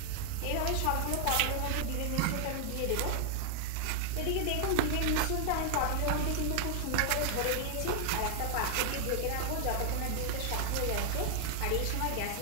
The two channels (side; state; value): both; different; correlation 0.00